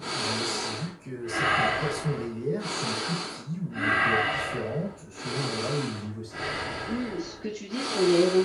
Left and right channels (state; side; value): identical; both; correlation 1.00